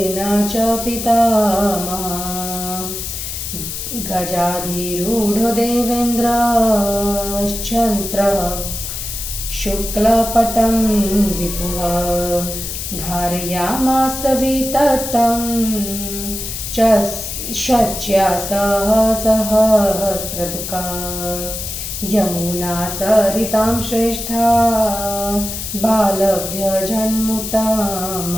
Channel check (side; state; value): left; noise; hiss, 6 dB below the sound